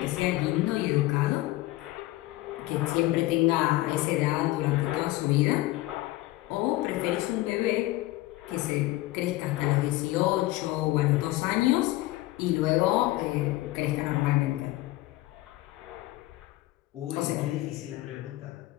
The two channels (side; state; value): right; quieter; 17.9 dB